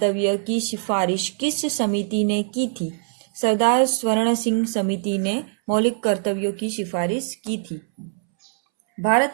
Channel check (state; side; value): silent; left; 64 dB below the other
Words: की सिफारिश किस समिति ने की थी? सरदार स्वर्ण सिंह समिति ने मौलिक कर्तव्यों की सिफारिश की थी।